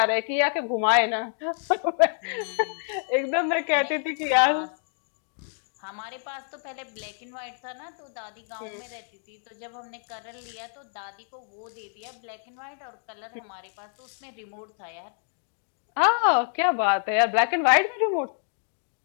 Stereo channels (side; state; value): right; silent; 56 dB below the other